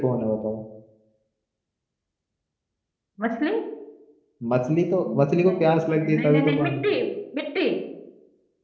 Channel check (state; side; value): identical; both; correlation 1.00